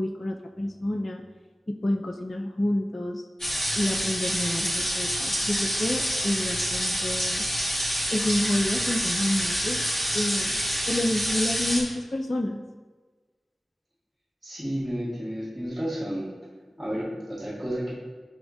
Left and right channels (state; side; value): normal; both; correlation 0.95